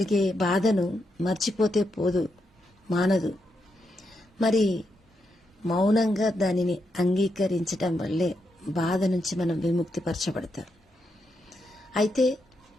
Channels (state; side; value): normal; both; correlation 0.82